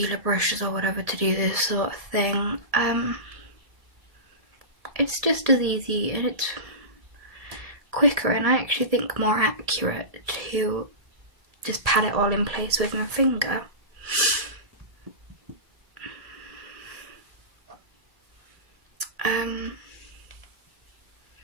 brushes or whatever to do this sort of thing. It's just as easy and it's quicker, and I actually think more accurate to just pat it all in place with my finger.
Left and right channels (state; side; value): late; left; 1.7 ms